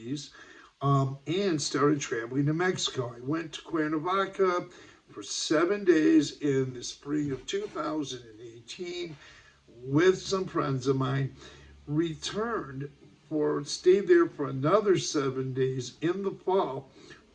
and started traveling to Mexico. I went to Cuernavaca for 7 days in the spring of 2018 with some friends of mine, returned stayed there for another 7 days in the fall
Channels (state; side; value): identical; both; correlation 1.00